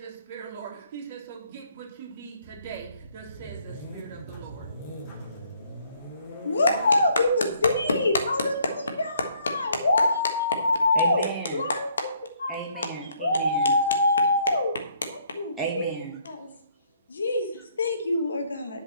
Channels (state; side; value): inverted; both; correlation -0.66